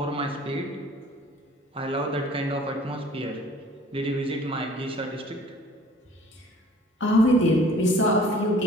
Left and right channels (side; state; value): both; normal; correlation 0.52